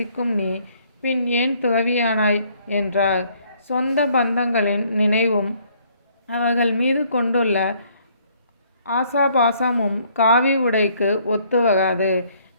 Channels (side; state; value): both; inverted; correlation -0.64